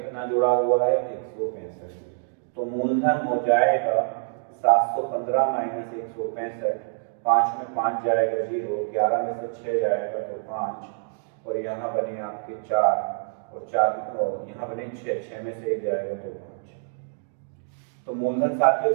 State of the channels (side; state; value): left; silent; digital silence